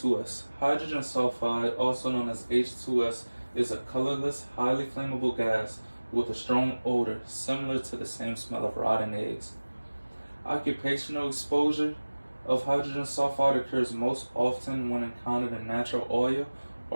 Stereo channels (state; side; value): inverted; both; correlation -1.00